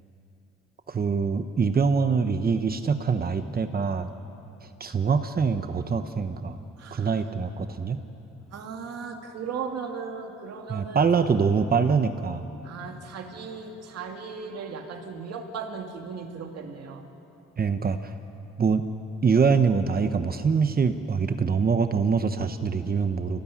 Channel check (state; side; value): quieter; left; 5.1 dB